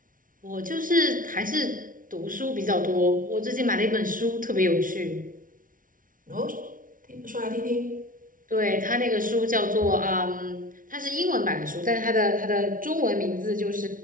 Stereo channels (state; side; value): late; left; 0.39 ms